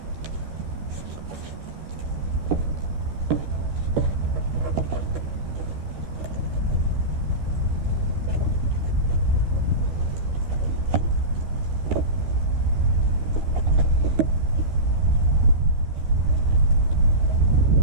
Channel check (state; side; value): late; left; 13 ms